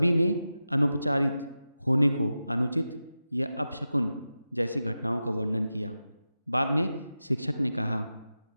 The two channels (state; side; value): inverted; both; correlation -0.93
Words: ने अनुपचारित होने को अनुचित या अपशकुन जैसी घटनाओं का वर्णन किया। बाद में शिक्षक ने कहा,